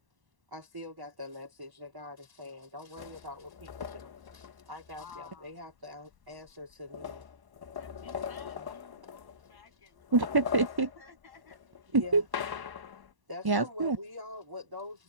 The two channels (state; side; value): late; left; 1.1 ms